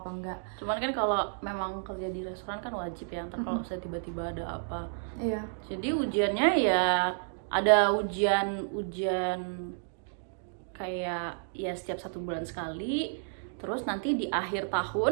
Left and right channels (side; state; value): left; silent; digital silence